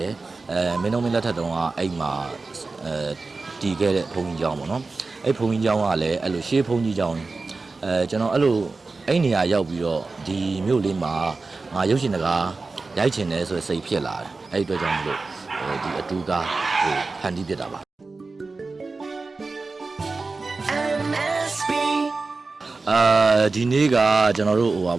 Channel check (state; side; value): quieter; left; 3.8 dB